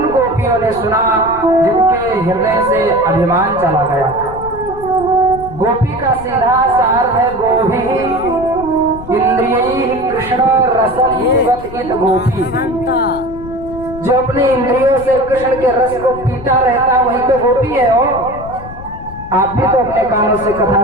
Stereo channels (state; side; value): noise; left; rumble, 14 dB below the sound